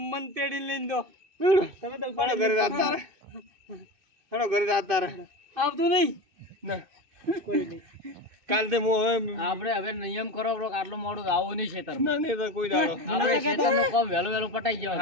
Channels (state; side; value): late; left; 2.5 ms